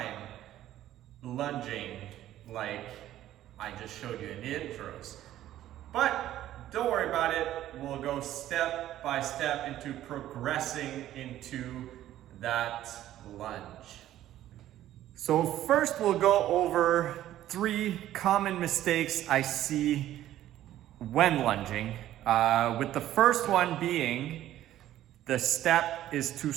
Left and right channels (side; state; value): left; quieter; 13.1 dB